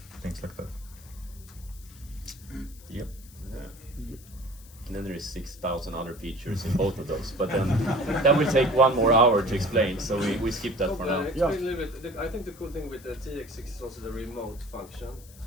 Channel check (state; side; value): noise; left; hiss, 22 dB below the sound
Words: things like that. Yep. And then there is 6,000 other features in both of those, but then that will take 1 more hour to explain, so we skip that for now. Explain a little bit. I think the cool thing with the TX-6 is also the remote function,